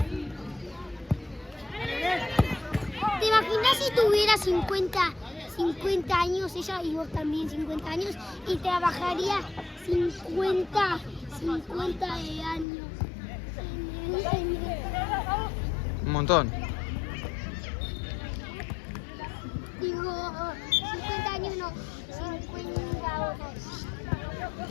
Dale, bien. ¿Te imaginas si tuviera 50 años, ella y vos también 50 años, y trabajaría 50 de años en Un montón. digo, 50 años no, 50 horas.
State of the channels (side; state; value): right; drops out; at 12.7 s